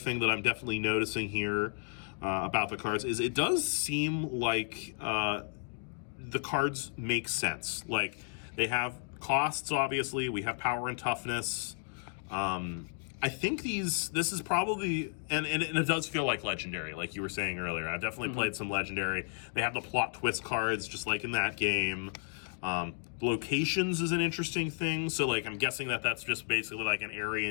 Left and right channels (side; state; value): right; silent; 56 dB below the other